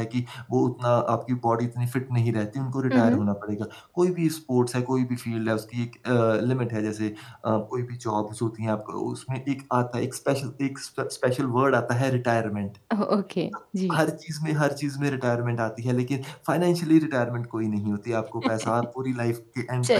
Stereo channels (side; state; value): both; identical; correlation 1.00